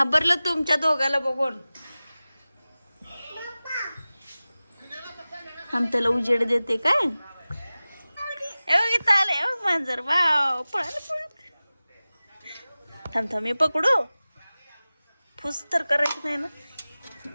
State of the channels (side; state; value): both; inverted; correlation -0.97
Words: तुमच्या दोघाला बघून. हम त्याला उजेड देते काय. इथं आले मांजर. वाव पळालं पळत. थांब थांब मी पकडू. फुस तर करायचं नाही ना.